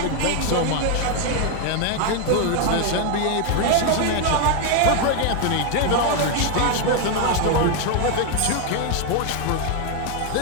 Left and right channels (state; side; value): different; both; correlation 0.01